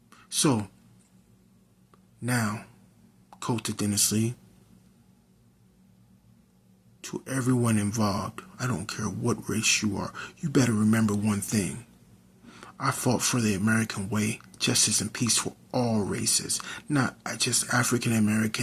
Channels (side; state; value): both; identical; correlation 1.00